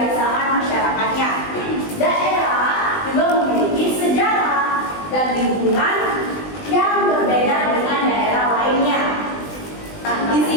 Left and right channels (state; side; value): late; right; 20 ms